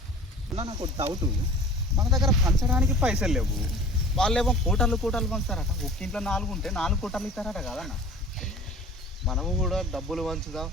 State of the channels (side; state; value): both; normal; correlation 0.43